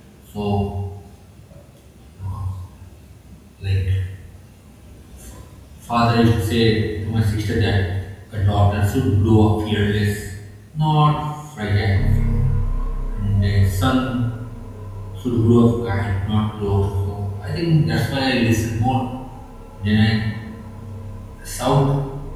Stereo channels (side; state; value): both; identical; correlation 1.00